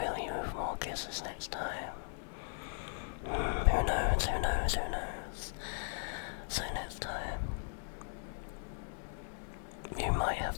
you with more kisses next time. Who knows? So next time, you might have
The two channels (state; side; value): silent; right; digital silence